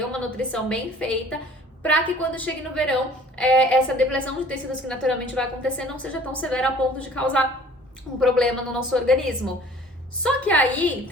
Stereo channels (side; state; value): both; normal; correlation 0.51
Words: uma nutrição bem feita, para que quando chegue no verão, essa depressão de tecidos que naturalmente vai acontecer não seja tão severa a ponto de causar um problema no nosso organismo. Só que aí